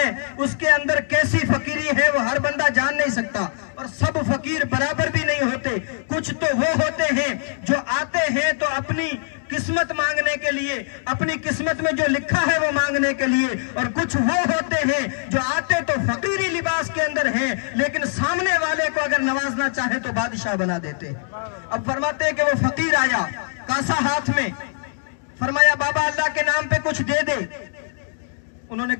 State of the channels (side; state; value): right; silent; digital silence